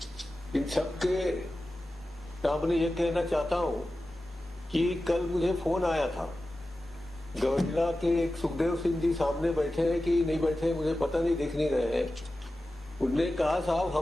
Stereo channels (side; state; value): both; normal; correlation 0.94